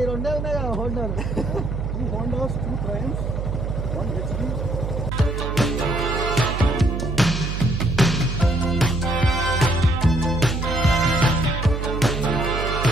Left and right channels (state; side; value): noise; right; hum, 3 dB below the sound